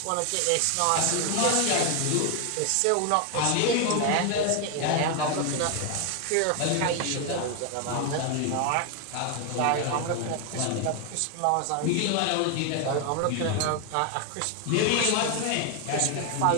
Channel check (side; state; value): both; different; correlation 0.01